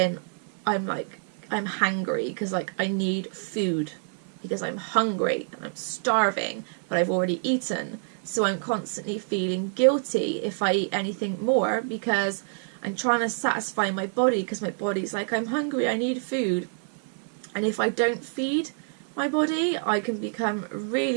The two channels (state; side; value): silent; left; 60 dB below the other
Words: I'm hangry, because like I need food, because I'm hungry and I'm starving, but I've already eaten. So I'm constantly feeling guilty if I eat anything more, because I'm trying to satisfy my body, because my body's like, I'm hungry, I need food. And if I don't feed my body, I can become